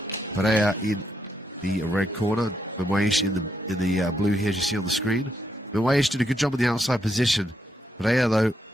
Perea in the red corner. Benouaich in the blue here, as you see on the screen. Benouaich did a good job in the outside position. Perea, though,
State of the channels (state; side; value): normal; both; correlation 0.79